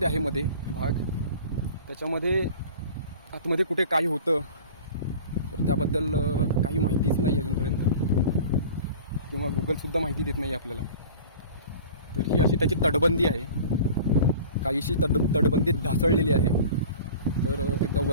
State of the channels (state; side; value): inverted; both; correlation -0.41